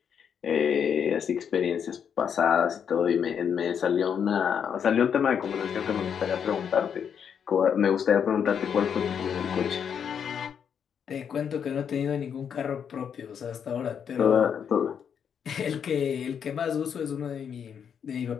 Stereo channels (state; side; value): quieter; right; 7.7 dB